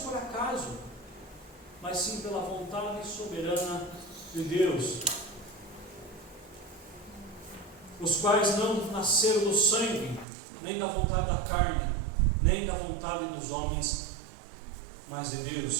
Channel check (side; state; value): left; drops out; at 10.2 s